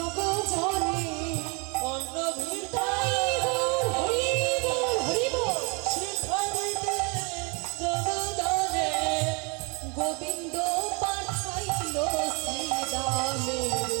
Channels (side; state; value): left; quieter; 32.1 dB